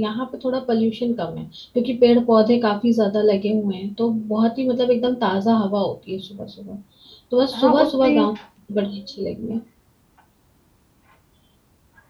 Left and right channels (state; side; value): identical; both; correlation 1.00